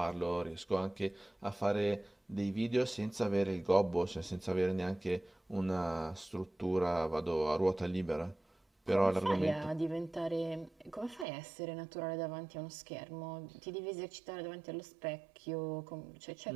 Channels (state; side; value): drops out; left; at 11.2 s